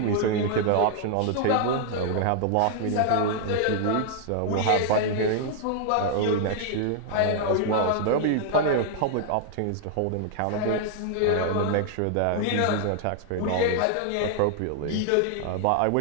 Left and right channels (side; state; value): both; different; correlation 0.00